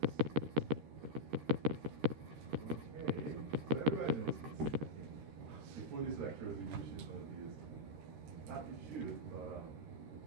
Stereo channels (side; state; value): left; late; 13 ms